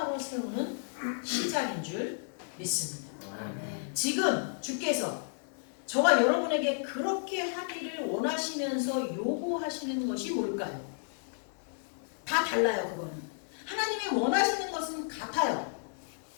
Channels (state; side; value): silent; right; digital silence